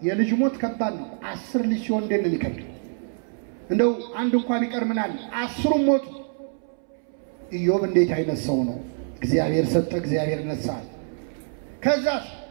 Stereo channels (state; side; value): silent; left; 62 dB below the other